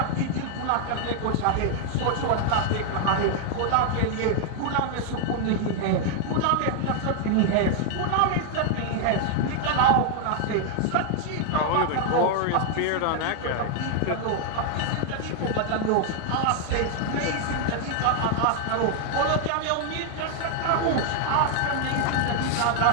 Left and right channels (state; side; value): different; both; correlation 0.00